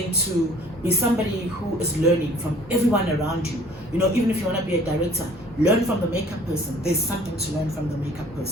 to be somebody who is learning from everyone around you. You know, even if you want to be a director, learn from the makeup person. There's something to learn from the makeup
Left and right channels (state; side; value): normal; both; correlation 0.53